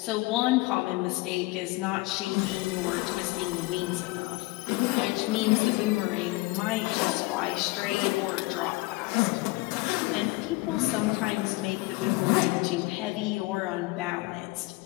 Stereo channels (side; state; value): right; quieter; 22.6 dB